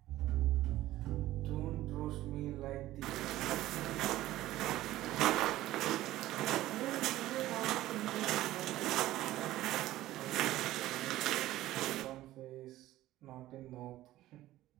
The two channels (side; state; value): left; quieter; 15.4 dB